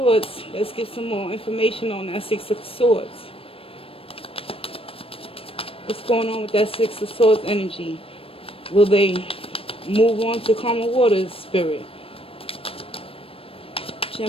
let's get some more information on that Six of Swords. What's going on with that Six of Swords energy? Will they move on to calmer waters, Spirit?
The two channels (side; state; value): right; late; 0.27 ms